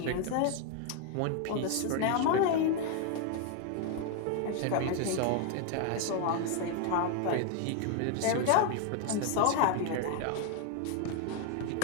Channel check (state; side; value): different; both; correlation 0.01